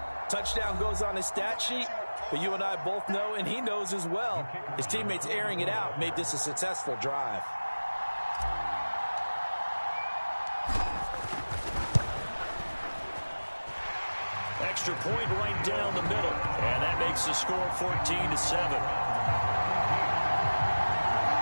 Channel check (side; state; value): both; inverted; correlation -1.00